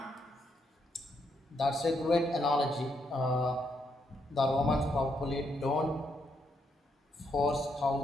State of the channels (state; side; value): normal; both; correlation 0.77